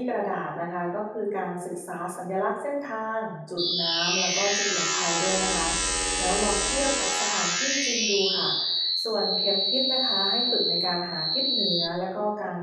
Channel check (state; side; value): identical; both; correlation 1.00